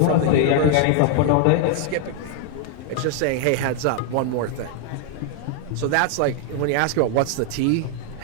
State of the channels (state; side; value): different; both; correlation 0.00